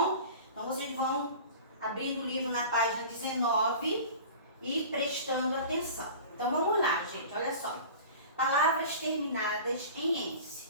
Então, vocês vão abrindo o livro na página 19 e prestando atenção. Então, vamos lá, gente, olha só. Palavras terminadas em ence.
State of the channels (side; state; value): both; inverted; correlation -0.38